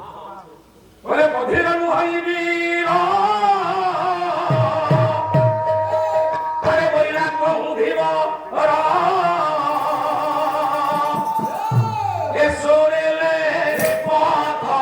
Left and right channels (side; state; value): both; identical; correlation 1.00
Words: বলে বধির নুহইবি আরে বইলা কহুধিব এসোরেলে